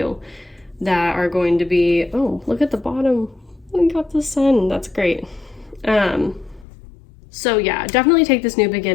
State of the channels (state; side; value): drops out; right; at 6.7 s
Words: that are going to be, oh, look at the bottom. We got the sun. That's great. So yeah, definitely take this new